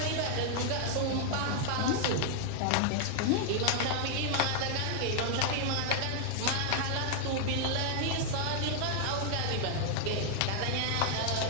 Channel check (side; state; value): both; different; correlation 0.00